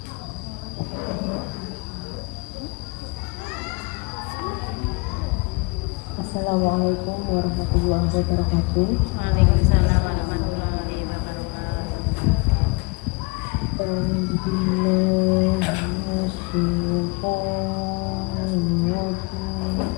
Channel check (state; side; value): quieter; right; 29.0 dB